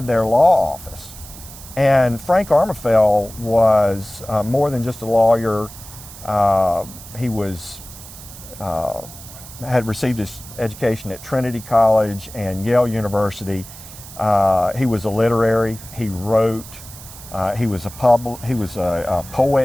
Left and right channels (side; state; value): right; noise; hiss, 16 dB below the sound